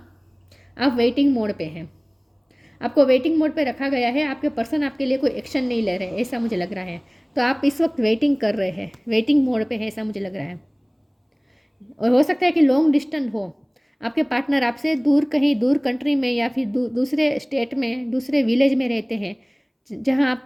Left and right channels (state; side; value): identical; both; correlation 1.00